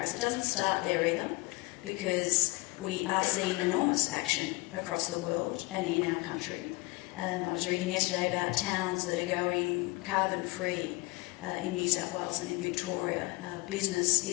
It doesn't start there either, because we are seeing enormous action across the world and in our country. I was reading yesterday about towns that are going carbon-free in New South Wales and in Victoria. Business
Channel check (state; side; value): quieter; right; 23.9 dB